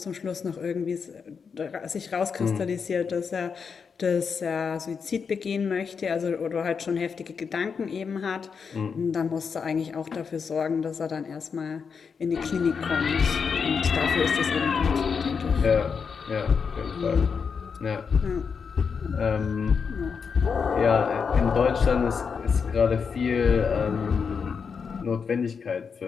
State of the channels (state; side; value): quieter; right; 5.9 dB